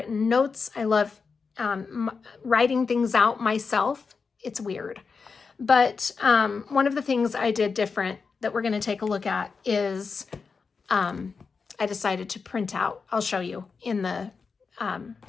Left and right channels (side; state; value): right; quieter; 5.1 dB